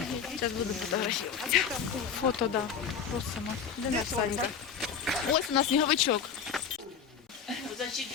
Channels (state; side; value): quieter; right; 6.9 dB